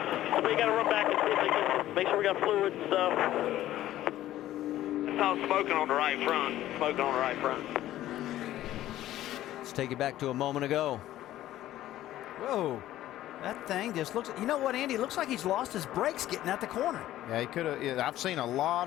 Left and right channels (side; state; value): right; quieter; 13.9 dB